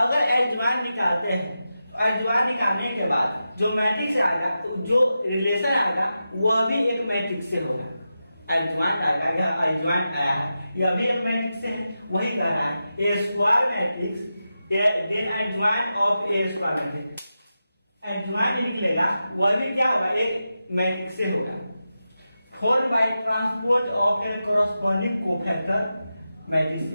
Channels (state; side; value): inverted; both; correlation -0.91